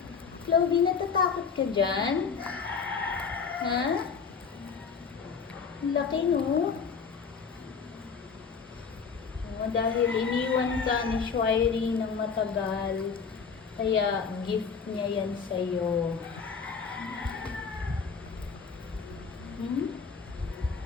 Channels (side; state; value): right; quieter; 5.7 dB